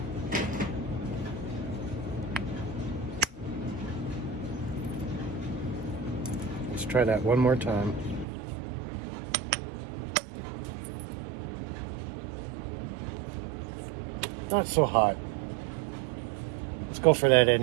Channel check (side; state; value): left; drops out; at 8.2 s